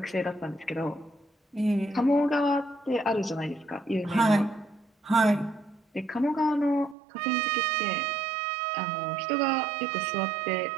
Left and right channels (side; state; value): left; drops out; at 7.0 s